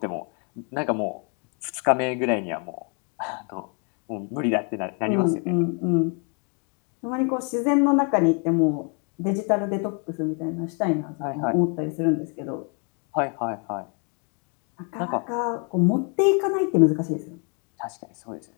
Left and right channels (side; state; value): right; quieter; 37.7 dB